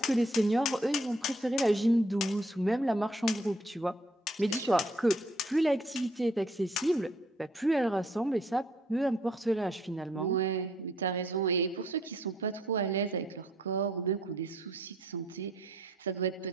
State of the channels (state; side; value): normal; both; correlation 0.65